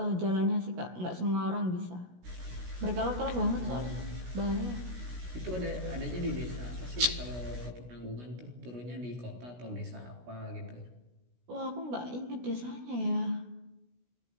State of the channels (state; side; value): late; left; 16 ms